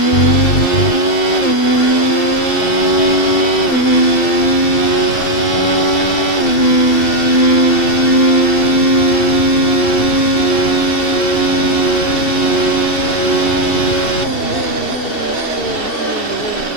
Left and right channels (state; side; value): late; right; 2.7 ms